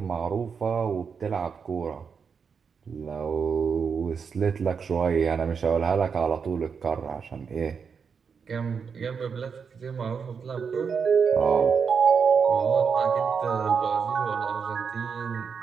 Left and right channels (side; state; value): left; quieter; 6.1 dB